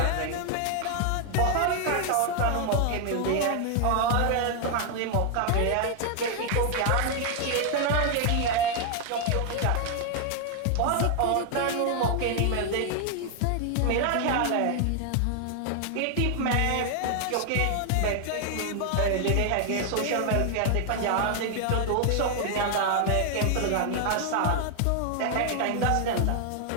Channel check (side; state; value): both; different; correlation 0.00